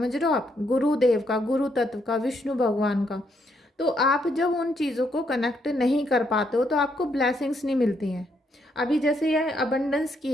रहे हो आप, गुरुदेव का, गुरु तत्व का, विष्णु भगवान का। तो आप जब उन चीज़ों को कनेक्ट नहीं कर पाते हो तो आपको ब्लेसिंग्स नहीं मिलती हैं। अभी जैसे यह अबंडेंस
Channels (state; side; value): normal; both; correlation 0.75